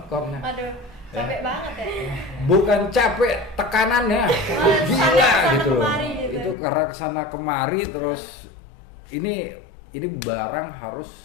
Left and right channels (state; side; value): drops out; right; at 6.6 s